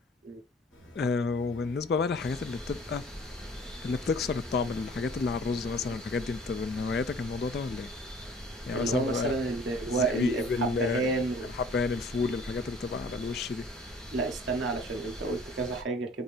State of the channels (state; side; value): normal; both; correlation 0.51